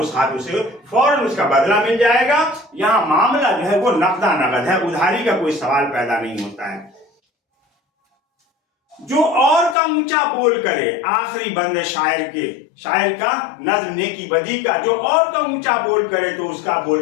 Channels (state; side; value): drops out; right; at 9.8 s